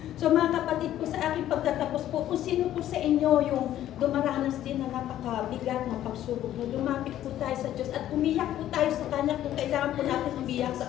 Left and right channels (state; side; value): quieter; right; 12.4 dB